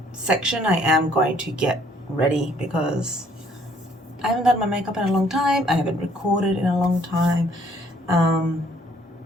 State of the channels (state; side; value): normal; both; correlation 0.63